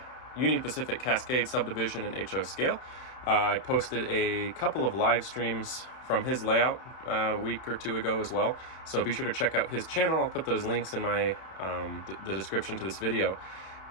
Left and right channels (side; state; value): right; late; 31 ms